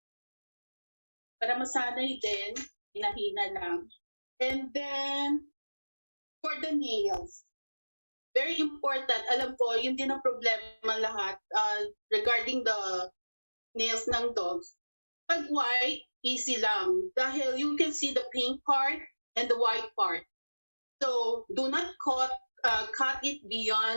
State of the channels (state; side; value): inverted; both; correlation -1.00